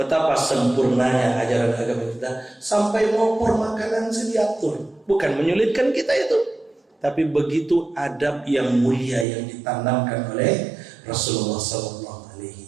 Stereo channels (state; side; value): drops out; left; at 9.2 s